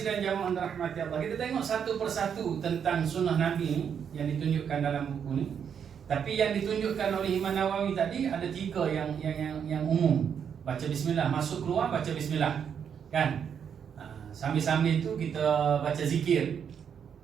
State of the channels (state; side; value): quieter; left; 7.7 dB